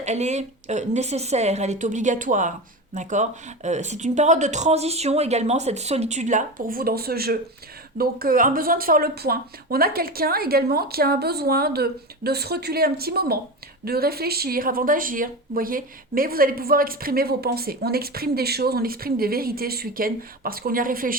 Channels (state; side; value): normal; both; correlation 0.24